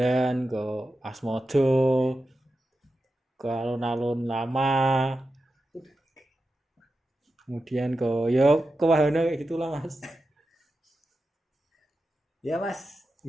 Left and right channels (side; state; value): both; normal; correlation 0.91